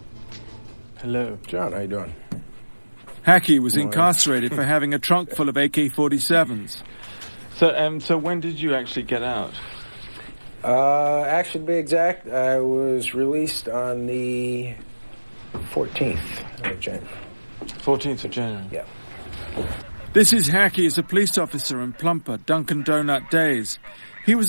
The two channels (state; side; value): inverted; both; correlation -1.00